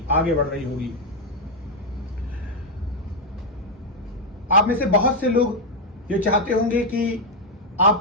आगे बढ़ रही होगी। आप में से बहुत से लोग ये चाहते होंगे कि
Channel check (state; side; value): normal; both; correlation 0.01